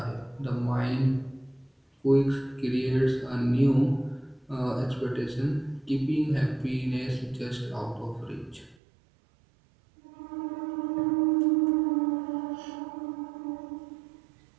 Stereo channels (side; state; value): left; drops out; at 8.8 s